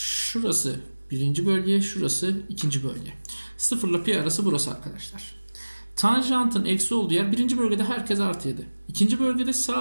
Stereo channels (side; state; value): both; inverted; correlation -1.00